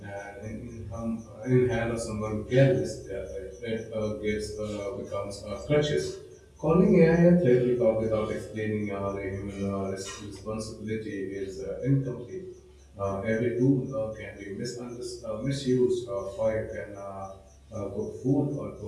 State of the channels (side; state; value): both; identical; correlation 1.00